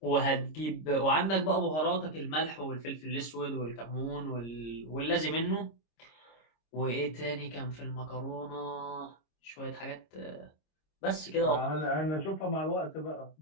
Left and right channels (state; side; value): late; right; 26 ms